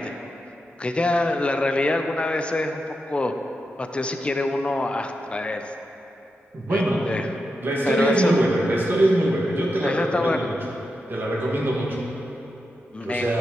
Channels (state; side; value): normal; both; correlation 0.87